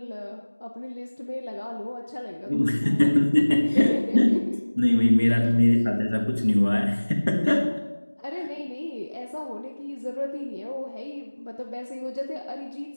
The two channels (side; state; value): both; inverted; correlation -1.00